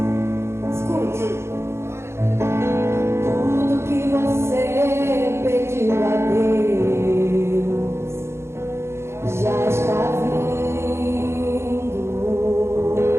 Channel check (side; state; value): left; late; 0.13 ms